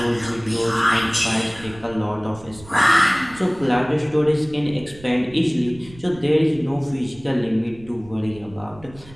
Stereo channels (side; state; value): right; noise; rumble, 21 dB below the sound